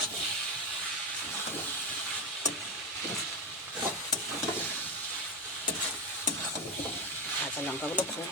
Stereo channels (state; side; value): normal; both; correlation 0.15